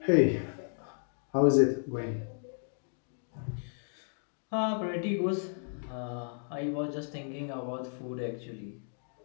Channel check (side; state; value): right; silent; digital silence